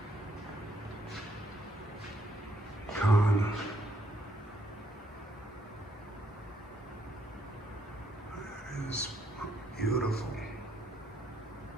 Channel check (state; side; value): normal; both; correlation 0.72